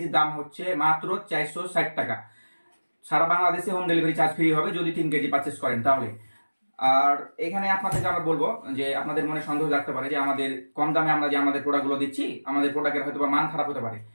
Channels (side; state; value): both; inverted; correlation -1.00